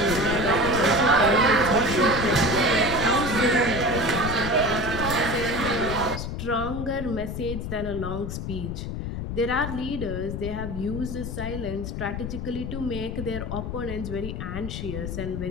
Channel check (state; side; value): noise; left; rumble, 5 dB below the sound